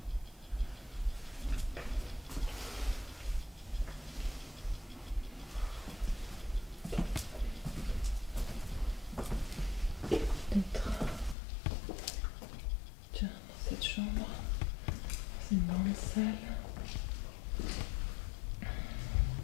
Peut-être. Tiens, dans cette chambre. C'est une grande salle.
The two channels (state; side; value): drops out; right; at 11.4 s